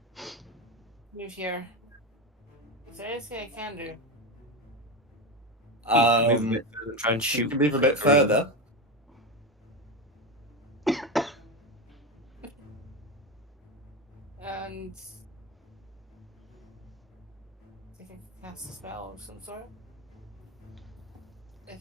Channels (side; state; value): both; normal; correlation 0.16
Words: Move here. Is there anything I can do? Move a bit further, try and You shoot. can move a bit further. And I think I can cast a spell of some sort.